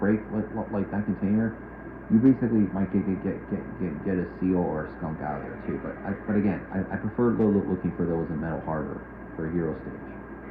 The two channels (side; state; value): both; identical; correlation 1.00